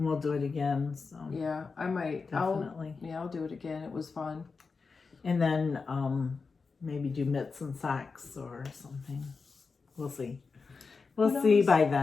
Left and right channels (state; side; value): quieter; right; 4.7 dB